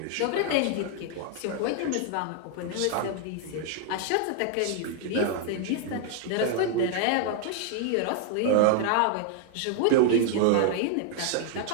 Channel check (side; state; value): both; different; correlation 0.00